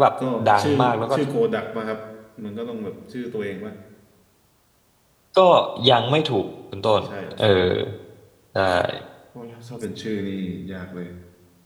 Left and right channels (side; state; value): both; identical; correlation 1.00